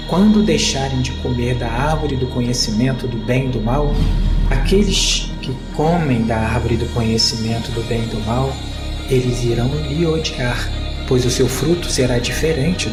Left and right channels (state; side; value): identical; both; correlation 1.00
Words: quando deixarem de comer da árvore do conhecimento do bem e do mal, aqueles que comem da árvore do conhecimento do bem e do mal, eles irão lhe odiar, pois o seu fruto será diferente